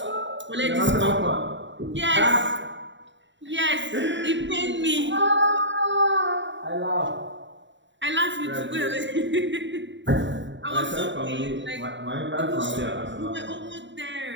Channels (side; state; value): left; late; 0.54 ms